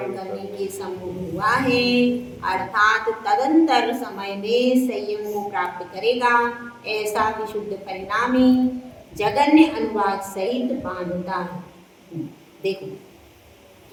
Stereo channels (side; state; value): both; identical; correlation 1.00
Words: करने के समूह हुआ है, अर्थात तदंतर समय में संयम को प्राप्त करेगा। ऐसा विशुद्ध परिणामी जगन्य अनुभाग सहित बांधता है। देखो